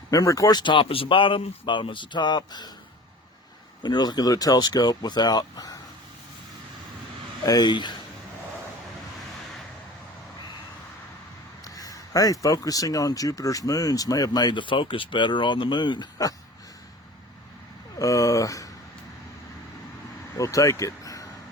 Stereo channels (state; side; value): normal; both; correlation 0.41